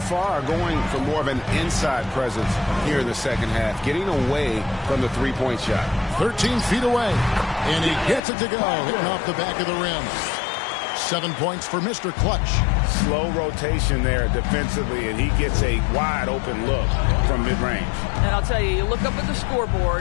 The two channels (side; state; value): right; drops out; at 8.2 s